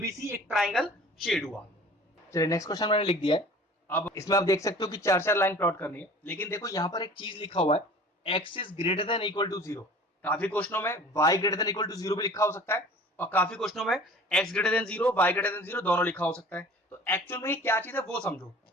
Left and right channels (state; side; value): normal; both; correlation 0.45